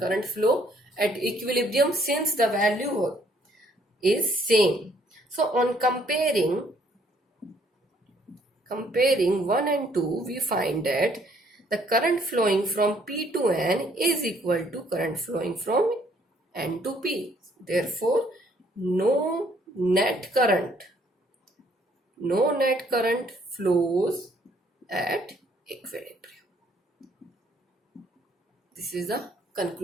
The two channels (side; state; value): both; normal; correlation 0.65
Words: flow at equilibrium since the value is same. So on comparing 1 and 2, we find that the current flowing from P to N is equal to current flowing from N to P. Therefore, no net current flows at equilibrium. This is the